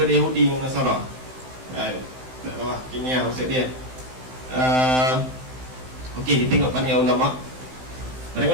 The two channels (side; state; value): left; late; 16 ms